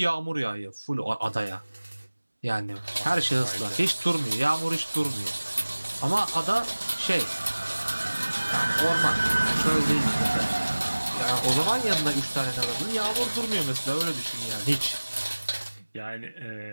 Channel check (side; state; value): both; inverted; correlation -1.00